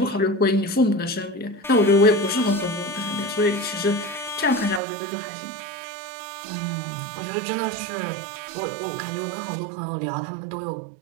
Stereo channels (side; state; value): left; drops out; at 4.8 s